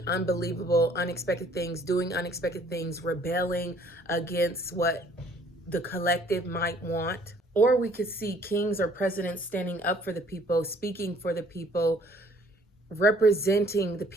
unbelievable, unexpected things, doing unexpected things, rebelling against what the collective might want. Or we could see kings or presidents standing up for the people, speaking for the people, representing the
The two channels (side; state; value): both; normal; correlation 0.59